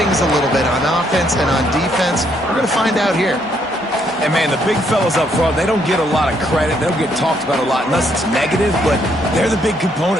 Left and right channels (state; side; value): normal; both; correlation 0.71